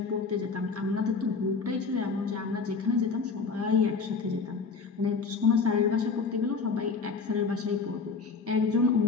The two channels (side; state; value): right; quieter; 4.7 dB